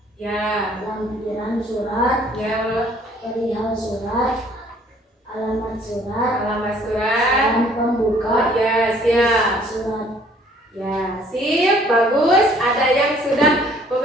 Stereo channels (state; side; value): normal; both; correlation 0.59